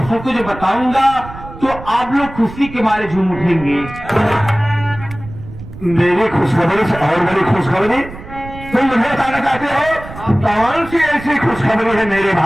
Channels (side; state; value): right; noise; rumble, 14 dB below the sound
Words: सबको जो बताऊंगा तो आप लोग खुशी के मारे झूम उठेंगे। मेरी खुशखबरी से और बड़ी खुशखबरी तुम मुझे बताना चाहते हो? कौन सी ऐसी खुशखबरी है मेरे